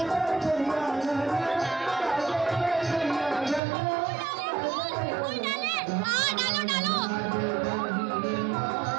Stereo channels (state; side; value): drops out; left; at 3.6 s